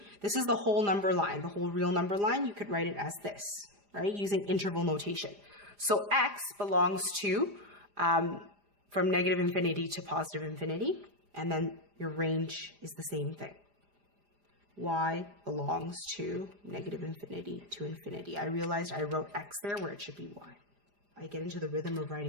this is the whole number line, the whole real number line. You could write it as this, right? Using interval notation. So x belongs to from -infinity to +infinity, and then your range is the same thing. Y belongs to -infinity to infinity. I realized I wrote x there where it should be y. I get into the rhythm of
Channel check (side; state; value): left; late; 4.9 ms